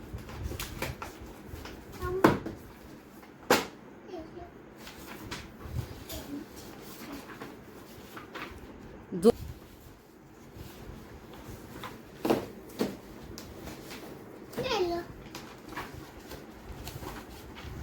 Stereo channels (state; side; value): identical; both; correlation 1.00